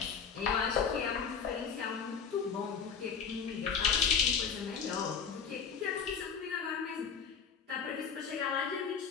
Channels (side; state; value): right; quieter; 6.4 dB